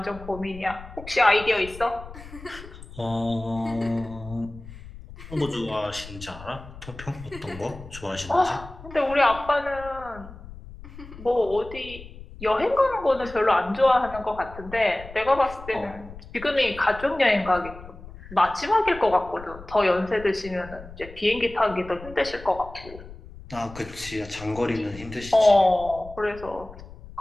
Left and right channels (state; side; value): noise; left; rumble, 16 dB below the sound